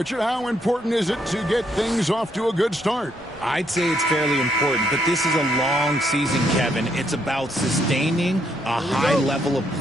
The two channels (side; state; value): both; normal; correlation 0.74